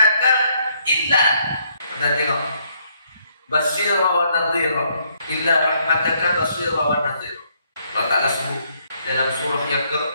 illa. Kita tengok, basyira wa nadhira illa rahmataka basyira wa nadhira. Allah Ta'ala sebut dalam surah yang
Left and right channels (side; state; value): both; inverted; correlation -0.70